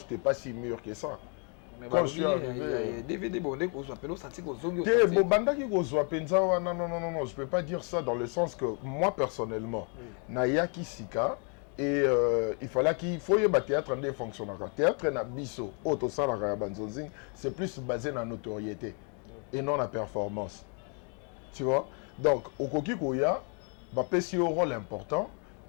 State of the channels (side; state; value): right; quieter; 39.1 dB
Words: pas si mûr que ça. Quand je suis arrivé DVD bondé ko zo appelo senti ko zongi te bo bandaki ko zo penza wana non je peux pas dire ça dans le sens que moi personnellement na yaki sika. Et il fallait qu'il faut y avoir théâtre en fonctionnaire. Théâtre na biso, auto salarié banzonzing, c'est plus basé dans la notoriété et non la performance. Tu vois? Donc, au koki koya, ba pesi un rôle important,